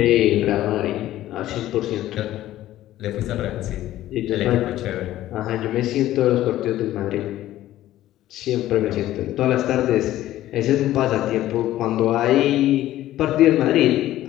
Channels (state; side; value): quieter; right; 14.2 dB